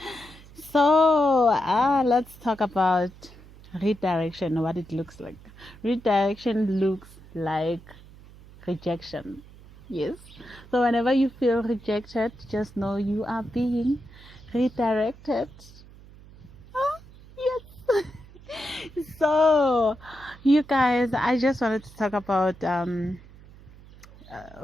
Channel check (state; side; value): noise; right; hum, 21 dB below the sound